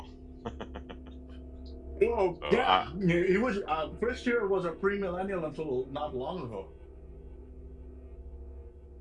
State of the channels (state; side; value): identical; both; correlation 1.00